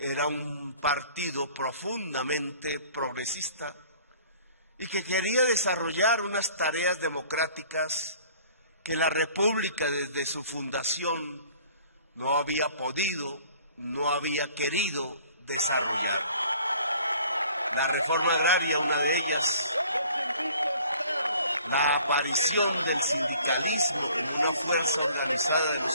un partido profundamente progresista y que quería desarrollar unas tareas democráticas que la República desde su fundación no había podido, no había querido desarrollar. La reforma agraria, una de ellas, la aparición del sindicalismo como una fuerza organizada de los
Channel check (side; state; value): both; inverted; correlation -0.53